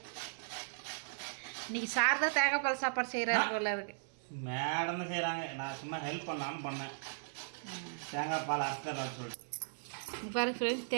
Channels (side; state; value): left; silent; digital silence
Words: இன்றைக்கி சார் தான் தேங்காய் பால் சாப்பாடு செய்கிறாரு போல இருக்குது. மேடம் தான் செய்கிறாங்க, நான் சும்மா ஹெல்ப் பண்ணலான்னு பண்ணேன். தேங்காய் பால் அரைச்சிடலாம் சொல்லிட்டு. பாருங்க ஃப்ரெண்ட்ஸ்,